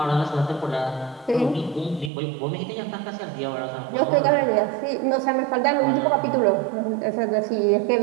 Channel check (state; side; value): drops out; left; at 2.1 s